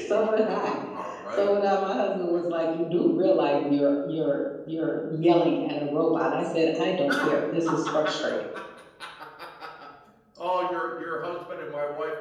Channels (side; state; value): both; identical; correlation 1.00